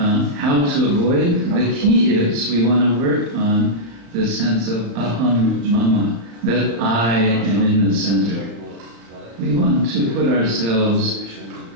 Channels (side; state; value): left; late; 35 ms